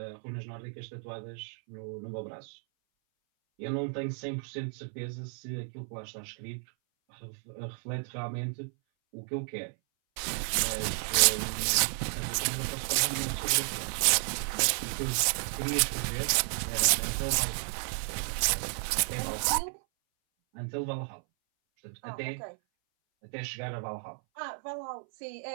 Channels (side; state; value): left; silent; 56 dB below the other